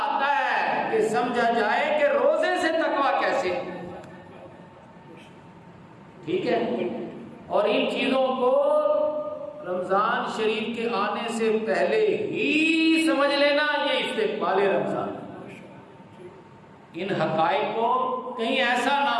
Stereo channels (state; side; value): identical; both; correlation 1.00